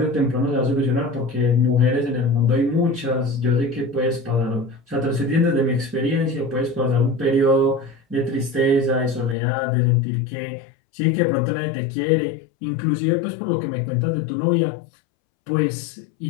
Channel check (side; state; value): right; drops out; at 9.3 s